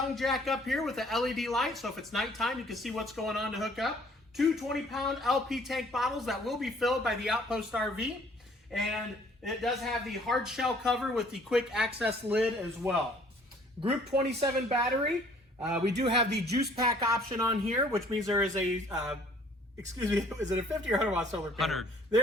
jack up here with the LED light, so if it's nighttime you can see what's going on to hook up. Two 20-pound LP tank bottles that will be filled by the Outpost RV, and it does have the hard shell cover with the quick access lid as well. Group 27 battery. We do have the juice pack option on here, which means there is a, excuse me, is it a 50 or 100 watt solar panel? 100.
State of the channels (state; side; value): normal; both; correlation 0.57